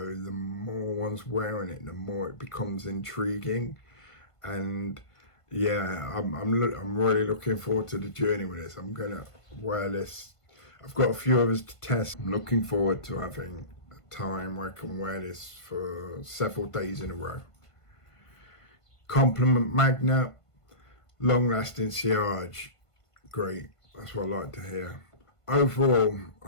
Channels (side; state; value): right; late; 1.5 ms